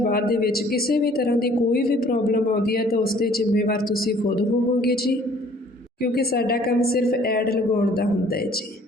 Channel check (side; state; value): both; normal; correlation 0.56